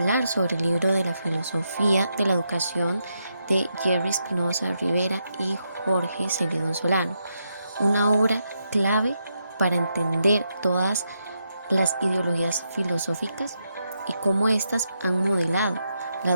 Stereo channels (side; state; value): both; inverted; correlation -0.82